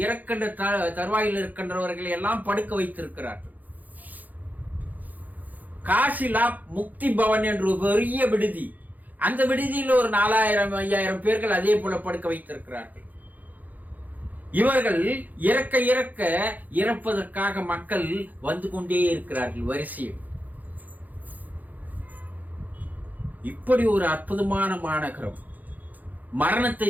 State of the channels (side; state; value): left; late; 0.082 ms